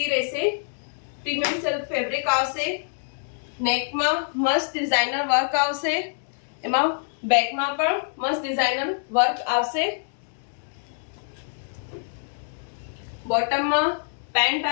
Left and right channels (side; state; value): right; silent; digital silence